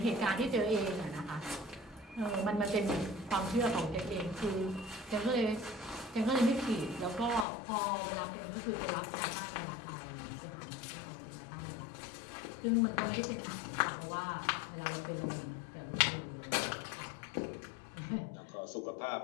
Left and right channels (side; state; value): right; drops out; at 7.5 s